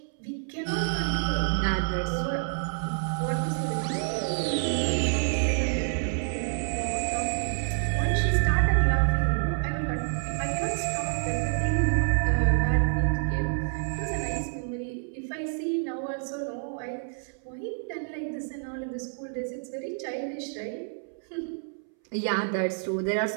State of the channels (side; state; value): left; silent; 59 dB below the other